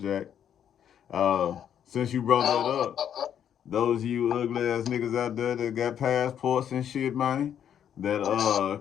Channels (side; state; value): right; quieter; 9.3 dB